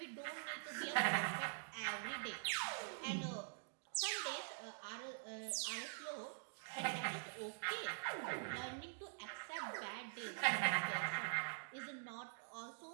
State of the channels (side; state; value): left; silent; digital silence